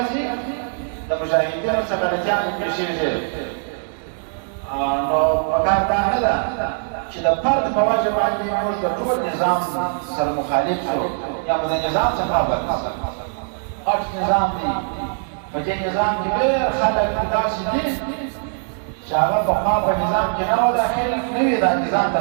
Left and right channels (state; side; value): silent; left; digital silence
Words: د مجاهدینو څه غلطیانې پېښېږي نو پکار دا نه ده چې د فرد په وجه باندې موږ د ټول نظام سره مخالف شو یا مو د نظام څخه بد غټ نظام دی په دې نظام کې ډېر خلک داسې دي چې هغه پخوا په نظام کې نه وو داخل نه وي دا نظام ته